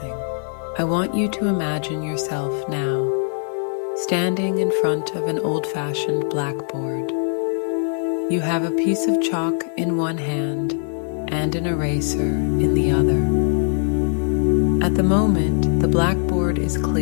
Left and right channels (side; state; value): right; silent; digital silence